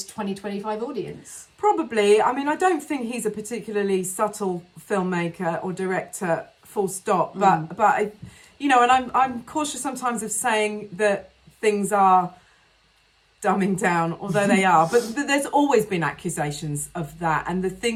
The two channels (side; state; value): both; identical; correlation 1.00